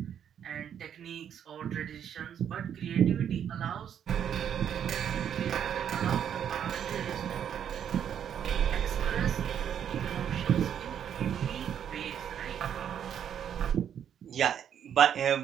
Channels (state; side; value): quieter; left; 9.0 dB